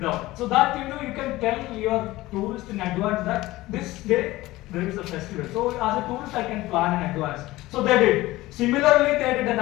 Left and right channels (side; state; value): right; quieter; 18.2 dB